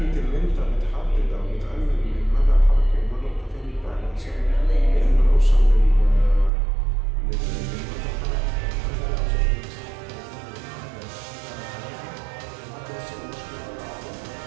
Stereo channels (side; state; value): left; drops out; at 6.5 s